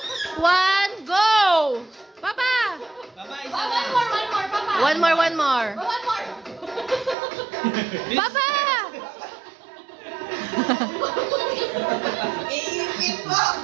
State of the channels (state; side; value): drops out; left; at 7.2 s